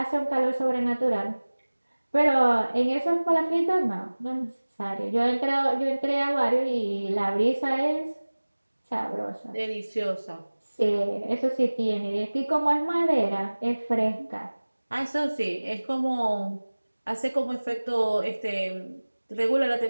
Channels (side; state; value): both; inverted; correlation -1.00